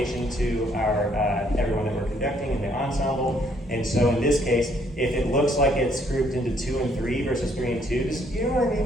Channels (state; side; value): normal; both; correlation 0.67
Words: to our everyone that we're conducting in the ensemble. And so in this case, if it looks like it's grouped into 2 and 3 versus 3 and 2, you know what I